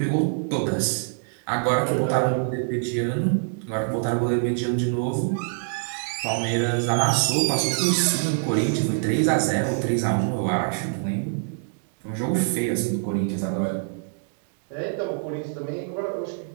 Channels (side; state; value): left; silent; digital silence